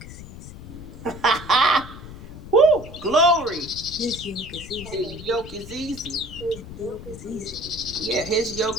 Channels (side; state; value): left; noise; rumble, 14 dB below the sound